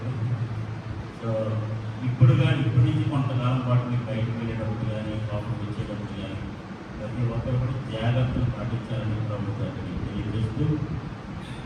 సో ఇప్పటి నుంచి కొంతకాలం పాటు మీరు బయటకు వెళ్ళేటప్పుడు కానీ లోపలికి వచ్చేటప్పుడు కానీ ప్రతి ఒక్కరు కూడా జాగ్రత్తలు పాటించాలని ప్రభుత్వాన్ని తెలియజేస్తూ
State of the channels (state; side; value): identical; both; correlation 1.00